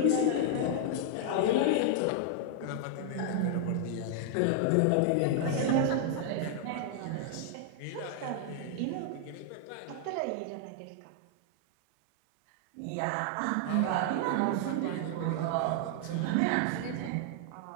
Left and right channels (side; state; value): both; different; correlation 0.00